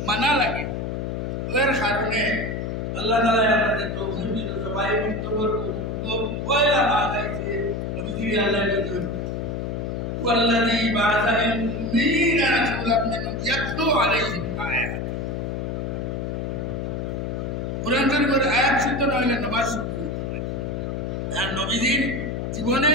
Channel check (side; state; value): left; noise; hum, 3 dB below the sound